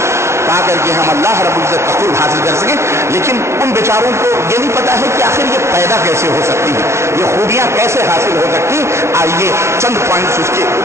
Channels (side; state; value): left; late; 0.13 ms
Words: پا کر کے ہم اللہ رب العزت کا قرب حاصل کر سکیں. لیکن ان بیچاروں کو یہ نہیں پتا ہے کہ آخر یہ پیدا کیسے ہو سکتی ہے, یہ خوبیاں کیسے حاصل ہو سکتی. آئیے چند پوائنٹس اس کے